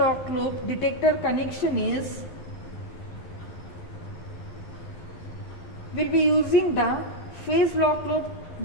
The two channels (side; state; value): right; late; 11 ms